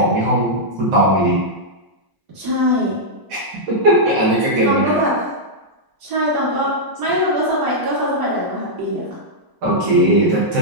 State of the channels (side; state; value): left; late; 1.0 ms